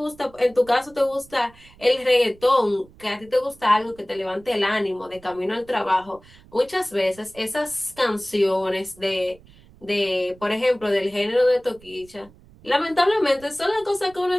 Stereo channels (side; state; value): right; noise; rumble, 25 dB below the sound